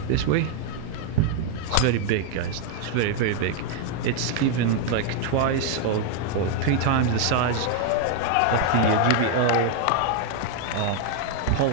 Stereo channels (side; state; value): both; different; correlation 0.01